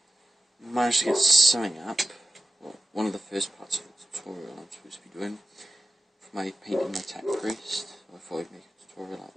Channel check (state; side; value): normal; both; correlation 0.92